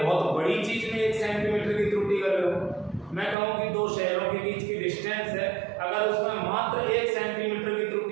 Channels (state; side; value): drops out; left; at 3.4 s